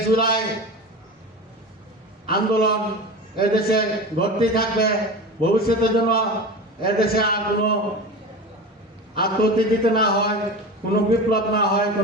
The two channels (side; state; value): both; normal; correlation 0.29